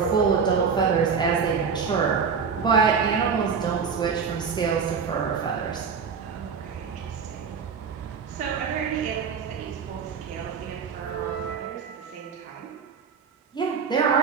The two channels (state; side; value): quieter; left; 6.1 dB